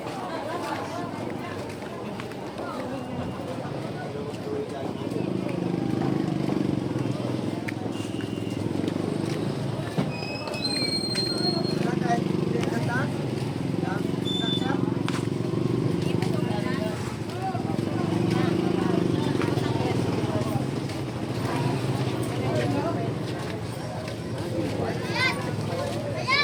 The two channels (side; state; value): both; identical; correlation 1.00